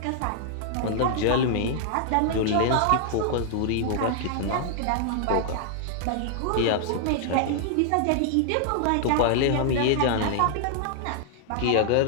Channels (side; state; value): both; different; correlation -0.01